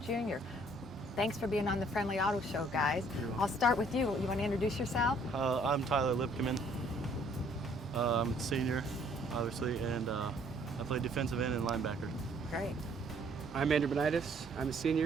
junior. Thanks for being on the Friendly Auto Show, guys. I'll start with you. You want to introduce yourself? I'm Tyler Lipkeman. I'm a senior, obviously, and I play defensive end and linebacker. Great. I'm Andrew Benitis. I'm a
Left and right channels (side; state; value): both; normal; correlation 0.62